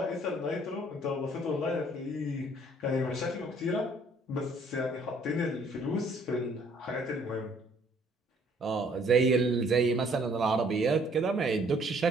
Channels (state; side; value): normal; both; correlation 0.61